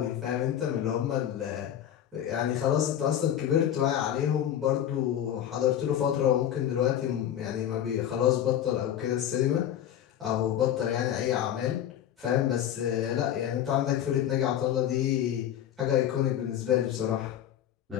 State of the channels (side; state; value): right; quieter; 10.5 dB